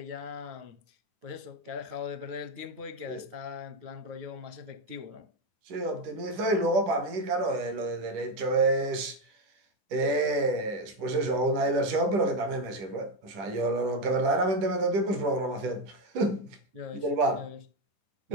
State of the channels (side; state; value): left; late; 10 ms